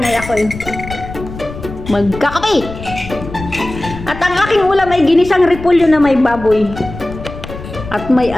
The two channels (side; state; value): left; noise; rumble, 12 dB below the sound